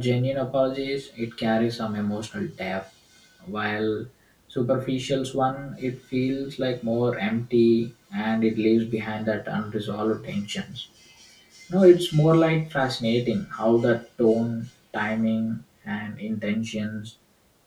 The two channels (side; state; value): both; identical; correlation 1.00